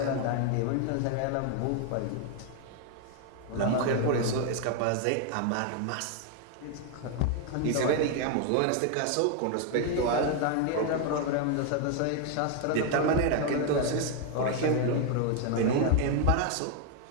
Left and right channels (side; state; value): both; different; correlation 0.01